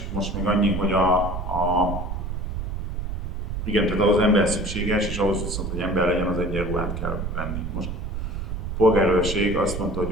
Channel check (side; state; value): right; noise; rumble, 4 dB below the sound